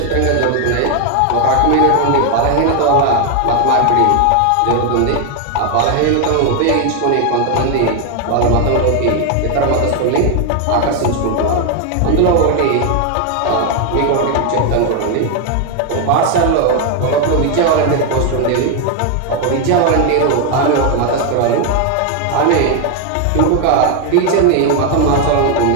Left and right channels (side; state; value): both; different; correlation 0.01